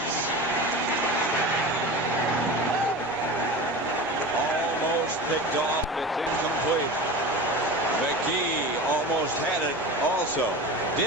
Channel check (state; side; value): normal; both; correlation 0.30